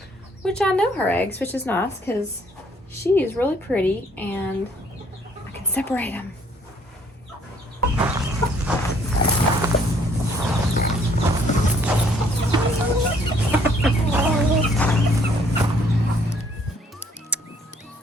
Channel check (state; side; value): normal; both; correlation 0.63